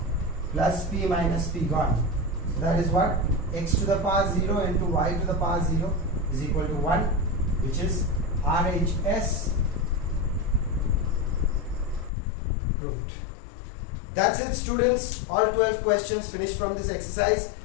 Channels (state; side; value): drops out; right; at 12.1 s